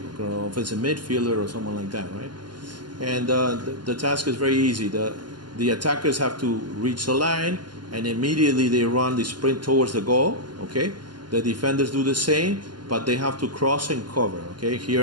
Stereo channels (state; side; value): late; left; 0.71 ms